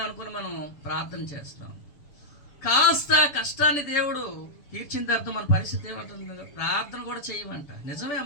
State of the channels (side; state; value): right; late; 6.9 ms